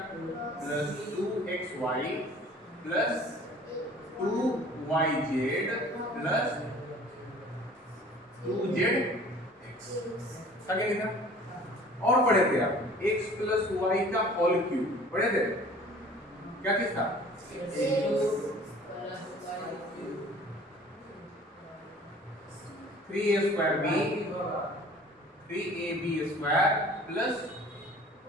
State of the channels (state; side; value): normal; both; correlation 0.49